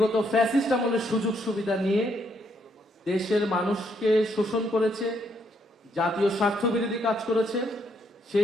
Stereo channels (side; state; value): both; normal; correlation 0.73